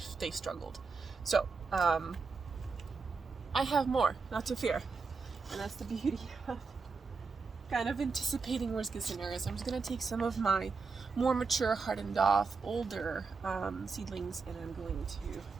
struggled. So, I have more, not to fear. And that's the beauty of kind of anticipating worst case scenarios. I'm just going to take some of my more mature, hardened off, older seedlings, and I'm going to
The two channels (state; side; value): quieter; left; 4.7 dB